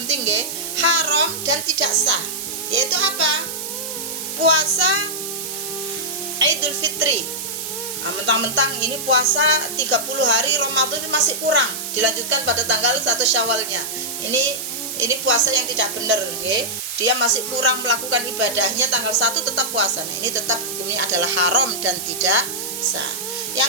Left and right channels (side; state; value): right; noise; hiss, 6 dB below the sound